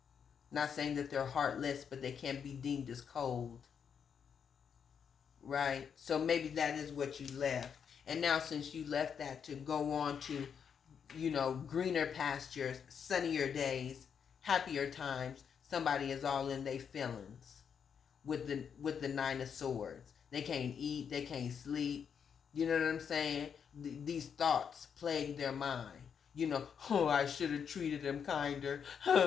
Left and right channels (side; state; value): right; quieter; 7.2 dB